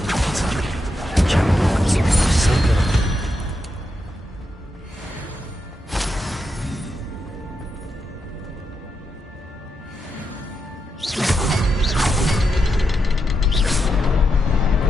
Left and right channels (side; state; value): both; normal; correlation 0.84